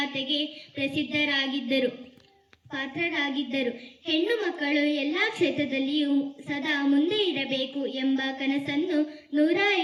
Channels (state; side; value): identical; both; correlation 1.00